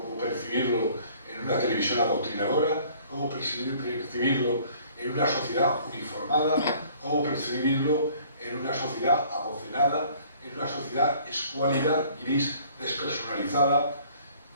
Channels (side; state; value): both; inverted; correlation -0.55